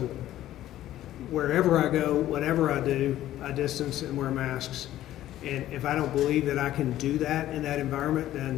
wherever I go, whatever I do, I distance and wear masks. And if I don't believe that I can do that in that environment,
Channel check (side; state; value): right; quieter; 13.5 dB